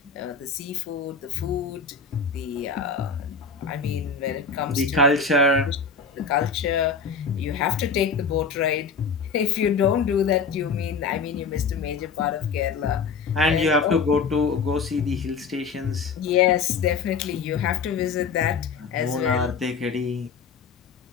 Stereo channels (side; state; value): right; quieter; 5.2 dB